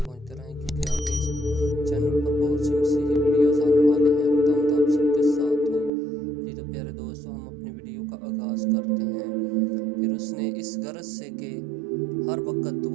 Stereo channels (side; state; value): left; drops out; at 5.9 s